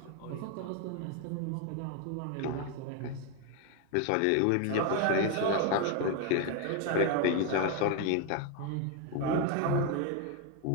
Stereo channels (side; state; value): both; different; correlation 0.01